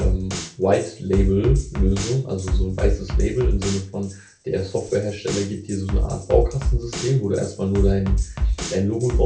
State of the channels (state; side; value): identical; both; correlation 1.00